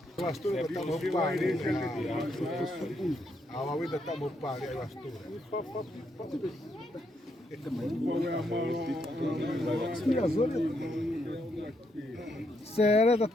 Vastura tá no pare. A Huawei tá no pare aí vastura. Sério,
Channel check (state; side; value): normal; both; correlation 0.78